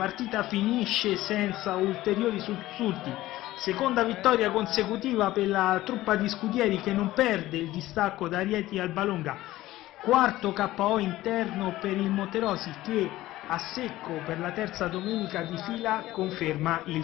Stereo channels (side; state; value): right; quieter; 16.2 dB